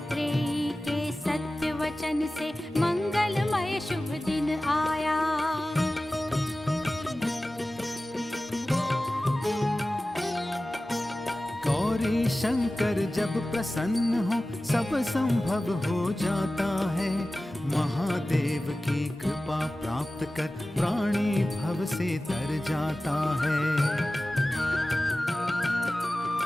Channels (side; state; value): both; normal; correlation 0.96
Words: के सत्य वचन से मंगलमय शुभ दिन आया। गौरी शंकर जब प्रसन्न हो, सब संभव हो जाता है। महादेव की कृपा प्राप्त कर प्राणी भव से तर जाता है।